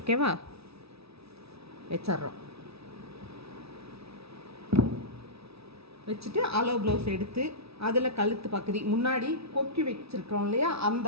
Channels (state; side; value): late; left; 0.77 ms